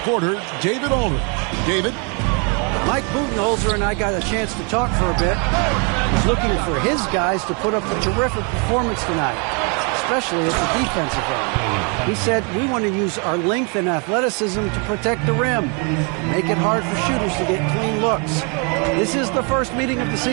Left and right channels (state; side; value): quieter; left; 35.1 dB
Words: David Aldridge. David? Mike Budenholzer and I got a chance to talk for a bit. He's looking for his guys to put up a terrific performance tonight, especially at the defensive end. He said, we want to use our length and athleticism to protect the rim, make it hard for shooters to get clean looks. This is the first meeting of the